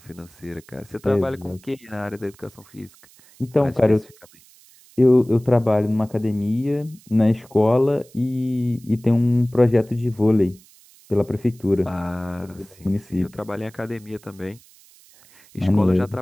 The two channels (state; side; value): noise; right; hiss, 27 dB below the sound